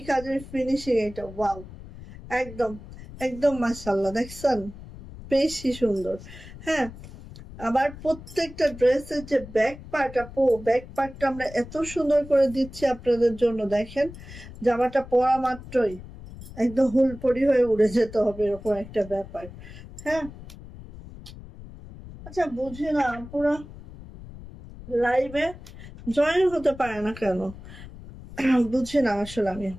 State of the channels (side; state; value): left; noise; rumble, 15 dB below the sound